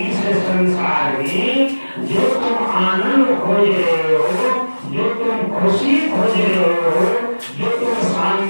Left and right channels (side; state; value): both; inverted; correlation -1.00